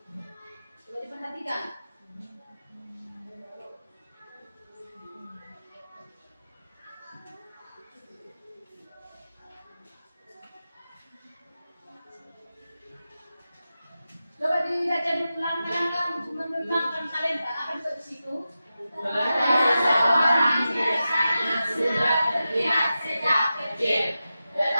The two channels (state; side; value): inverted; both; correlation -0.92